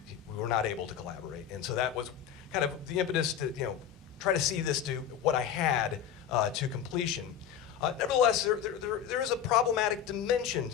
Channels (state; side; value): quieter; right; 9.0 dB